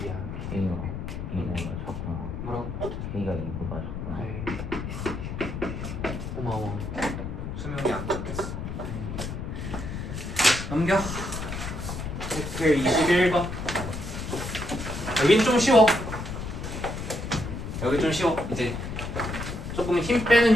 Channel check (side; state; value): left; noise; rumble, 6 dB below the sound